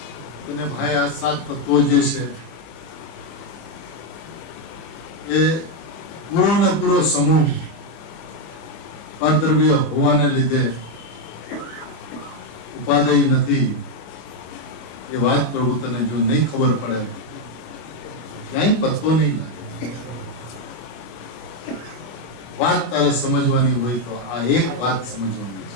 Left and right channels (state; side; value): late; right; 25 ms